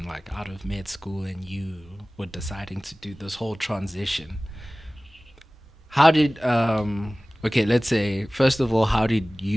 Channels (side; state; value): both; normal; correlation 0.98